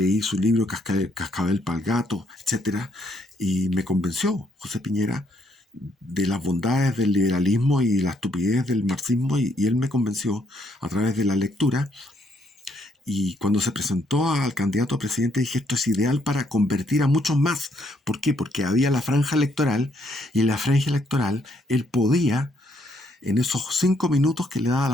su libro Cascabel pa'l Gato, etc. Y me convenció José Piñera de las bondades del liberalismo y la estupidez del marxismo, y él me convenció a través de la lectura. Y cuando se presentó al candidato a presidente, dije, esto es ideal para convertir a muchos más. ¿Por qué? Porque había la franja electoral, y en la franja electoral él podía en esos 5 minutos que le daba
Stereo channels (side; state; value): both; normal; correlation 0.71